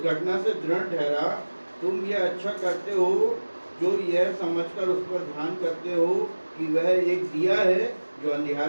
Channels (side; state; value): both; inverted; correlation -1.00